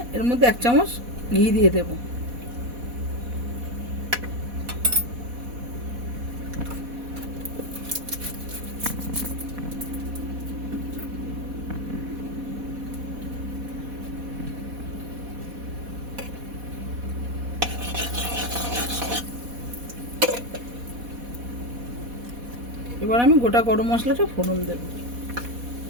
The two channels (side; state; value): left; late; 4.1 ms